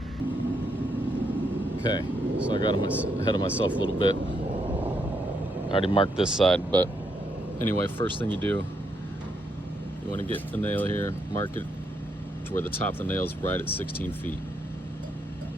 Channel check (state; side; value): normal; both; correlation 0.77